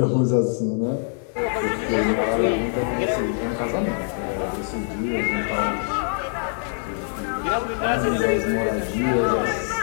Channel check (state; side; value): silent; right; 63 dB below the other